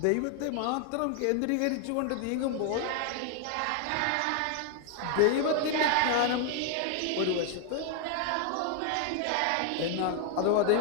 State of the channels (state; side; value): different; both; correlation 0.00